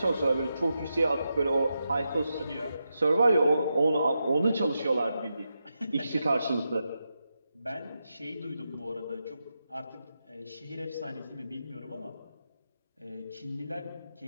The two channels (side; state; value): both; inverted; correlation -0.87